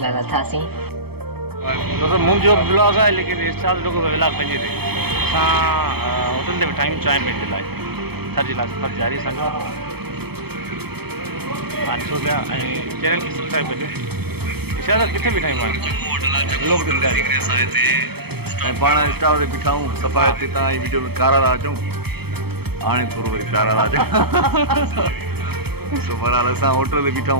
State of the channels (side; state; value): left; late; 0.97 ms